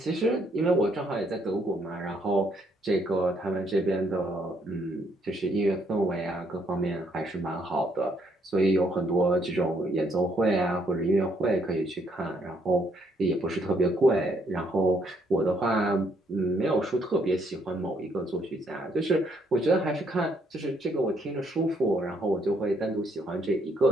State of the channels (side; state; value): both; normal; correlation 0.71